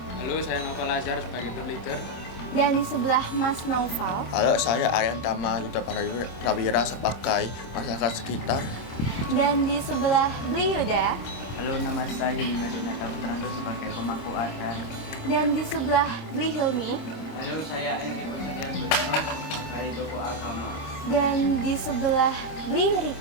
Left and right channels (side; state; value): right; late; 26 ms